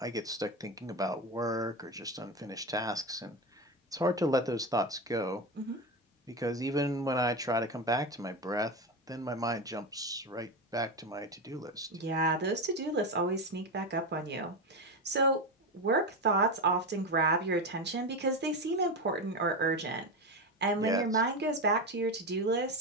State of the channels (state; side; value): normal; both; correlation 0.17